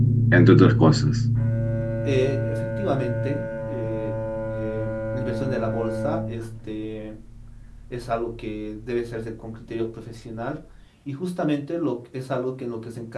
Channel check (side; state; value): both; identical; correlation 1.00